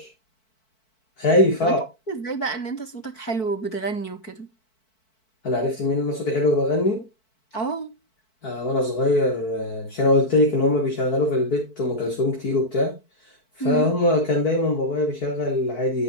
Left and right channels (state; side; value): late; right; 4.5 ms